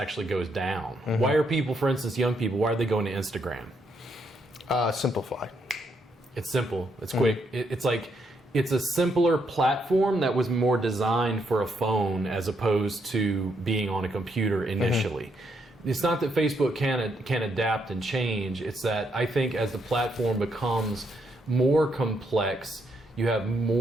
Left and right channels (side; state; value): both; normal; correlation 0.76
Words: goes down. Why are people, for instance, young people, why are they going to Instagram? Simplify. It's simple. It's quick. It's like it's a simpler platform that was more designed for a phone as opposed to being on a computer initially. It's not that Facebook can adapt and change. It's that I think as the platform becomes more complex, you have